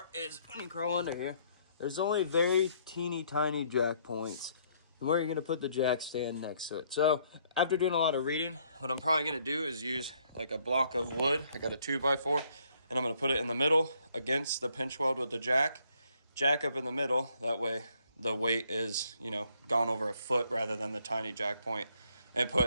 is when you crawl under here, there's only very teeny tiny jack points. And where you're going to put the jack stand next to it. So after doing a lot of reading, what I'm probably going to do is use like a block of wood. I got a 2x4, and I'm going to put it in the middle against the pinch weld with the jack up in the middle. That way the weight is, you know, gone over a foot rather than the tiny jack point, and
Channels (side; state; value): both; inverted; correlation -0.68